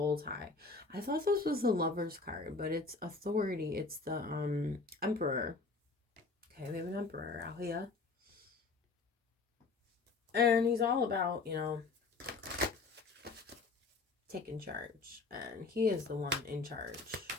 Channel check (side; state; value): right; quieter; 4.0 dB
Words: tie. I thought this was the Lover's card, but it's authority. It's the Emperor. Okay, we have an Emperor out here. And he's all about, you know, taking charge. And he is the one in charge.